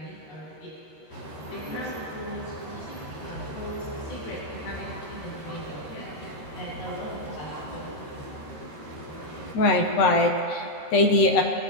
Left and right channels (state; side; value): late; right; 13 ms